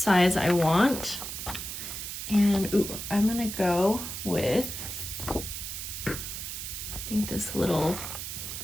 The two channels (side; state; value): right; noise; hiss, 6 dB below the sound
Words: I want. And ooh, I'm gonna go with, I think this little